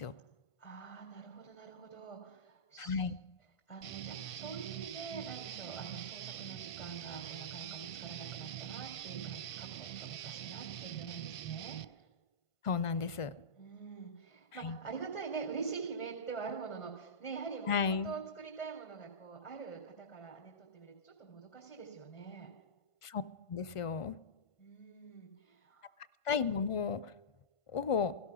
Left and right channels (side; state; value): right; late; 1.5 ms